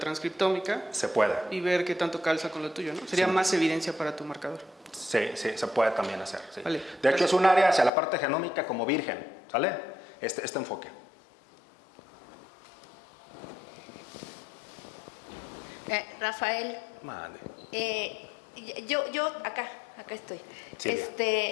Se puede. Y ver qué tanto calza con lo tuyo, ¿no? Sería Sí. más evidencia para tu marcador. Sí, se puede también hacer. Sí. Vale, de hecho, es un área hacia la parte genómica como virgen, ¿sale? Este enfoque. Rafael, Mande. yo acá estoy. Silvia.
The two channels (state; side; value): drops out; right; at 7.9 s